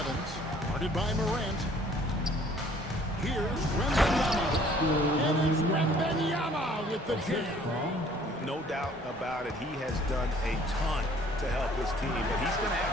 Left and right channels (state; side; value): normal; both; correlation 0.56